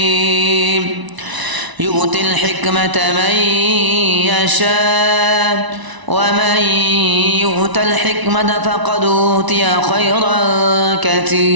يؤتي الحكمة من يشاء ومن يؤت الحكمة فقد أوتي خيرا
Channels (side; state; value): left; late; 1.0 ms